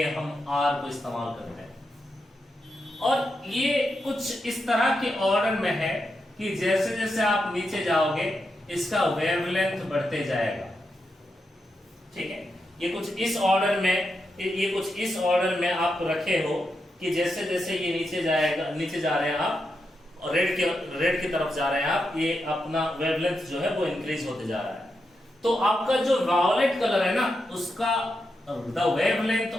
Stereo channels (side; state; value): both; normal; correlation 0.86